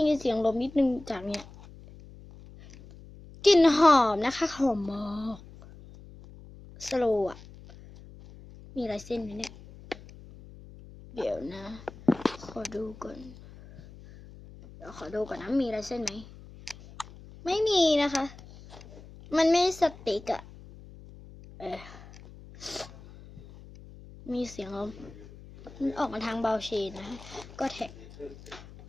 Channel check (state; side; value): noise; left; hum, 19 dB below the sound